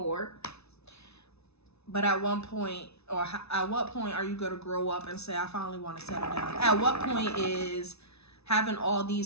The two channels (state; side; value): late; right; 0.80 ms